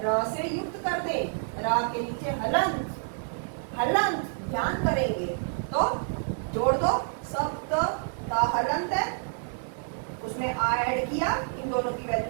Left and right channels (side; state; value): left; silent; digital silence